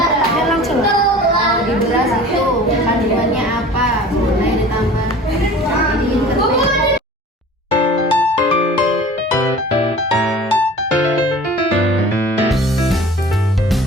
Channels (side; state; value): both; normal; correlation 0.43